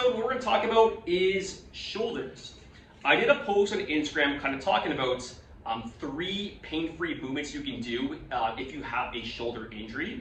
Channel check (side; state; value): both; identical; correlation 1.00